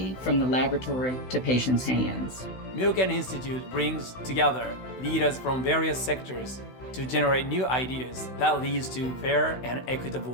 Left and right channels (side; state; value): right; late; 16 ms